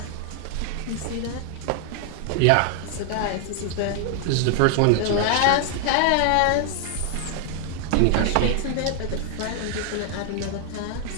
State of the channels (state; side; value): different; both; correlation 0.00